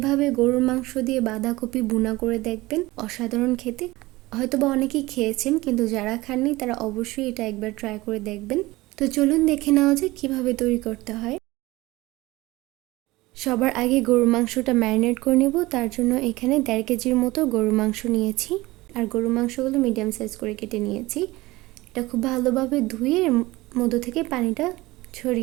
গরুর মাংস দিয়ে বাঁধাকপি ভুনা করে দেখবেন, অসাধারণ খেতে। হয়তোবা অনেকেই খেয়েছেন, কিন্তু যারা খাননি তারা অবশ্যই এটা একবার ট্রাই করে দেখবেন। তো চলুন দেখে নেওয়া যায় কীভাবে তৈরি করতে হয়। সবার আগে গরুর মাংসটা ম্যারিনেট করে নেব। তার জন্য এখানে 1.5 কেজির মতো গরুর মাংস নিয়েছি, আর গরুর মাংসগুলো মিডিয়াম সাইজ করে কেটে নিয়েছি। এটা খুব ভালোভাবে ধুয়ে এর মধ্য থেকে পানিটা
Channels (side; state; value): left; quieter; 19.9 dB